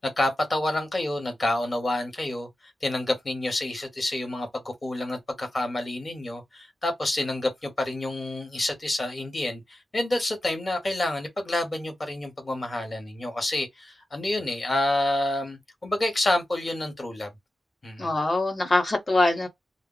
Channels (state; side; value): normal; both; correlation 0.92